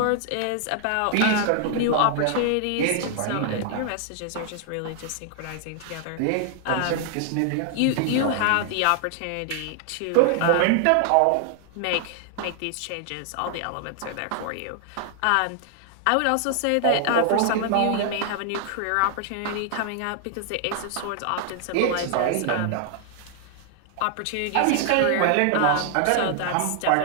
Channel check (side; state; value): both; different; correlation 0.00